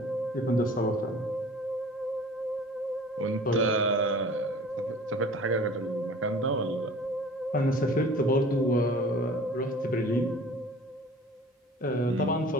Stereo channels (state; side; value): normal; both; correlation 0.45